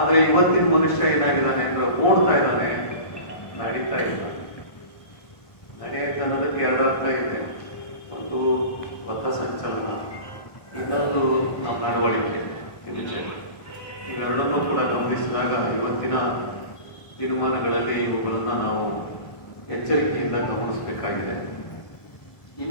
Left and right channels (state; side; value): late; right; 1.2 ms